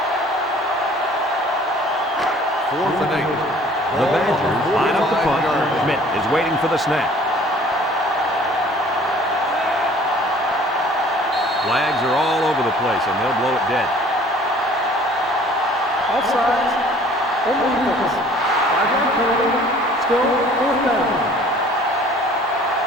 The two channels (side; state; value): both; normal; correlation 0.52